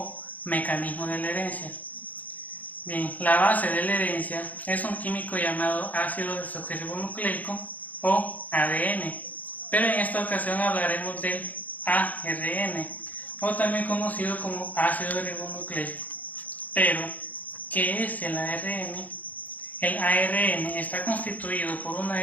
mecanismo de la herencia. Bien, la base de la herencia es un químico llamado ácido desoxirribonucleico o ADN, pero en esta ocasión hablaremos del ARN, o también conocido como ácido ribonucleico. Pero, ¿qué es el ARN? El ARN está constituido por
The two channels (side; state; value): right; late; 0.079 ms